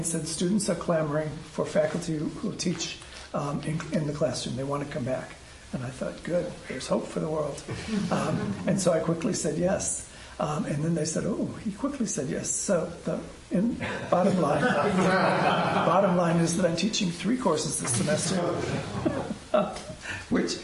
said students are clamoring for faculty who teach in the classroom. They want to come back. And I thought, good, there's hope for the world. And so I quickly said yes. And then they said, oh, he quickly said yes. So bottom line is that I'm teaching 3 courses this semester, which,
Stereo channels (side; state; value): both; identical; correlation 1.00